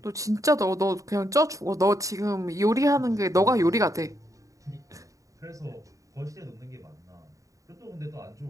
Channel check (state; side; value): late; left; 0.16 ms